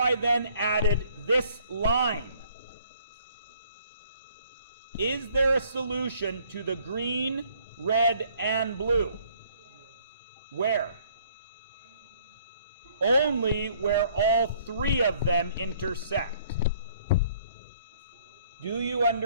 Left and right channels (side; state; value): both; inverted; correlation -0.61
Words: then added this line? Is there a solution to the green, red, and blue? Where? Only where all 3 of them intersect. Do you